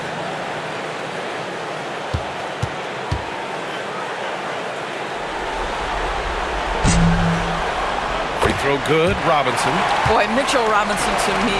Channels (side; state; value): both; identical; correlation 1.00